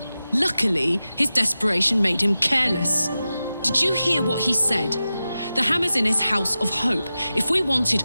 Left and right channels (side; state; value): both; inverted; correlation -0.94